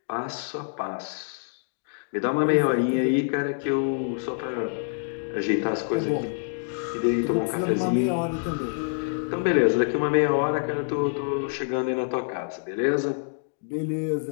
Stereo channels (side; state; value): right; silent; digital silence